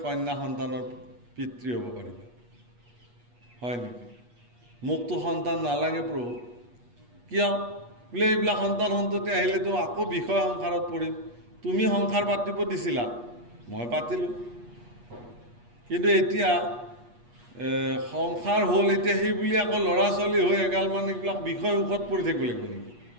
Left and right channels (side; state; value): left; late; 8.3 ms